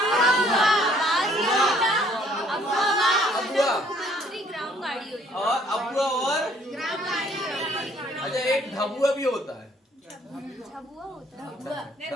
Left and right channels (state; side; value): normal; both; correlation 0.61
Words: और अबुआ और अच्छा एक ढबुआ भी होता है।